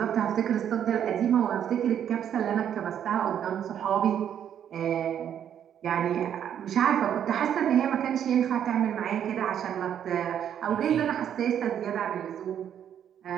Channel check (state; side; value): quieter; left; 9.4 dB